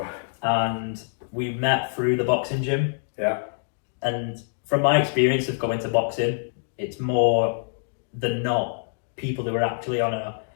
And we met through the boxing gym. Yeah. And from my experience of going to boxing, it's more than not people who are actually on a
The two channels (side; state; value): right; silent; digital silence